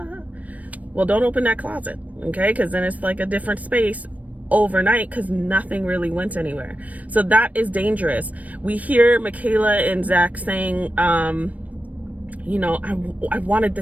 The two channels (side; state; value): left; late; 0.071 ms